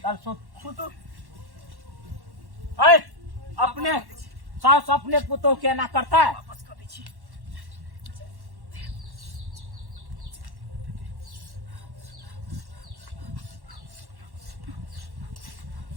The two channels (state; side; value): late; left; 1.1 ms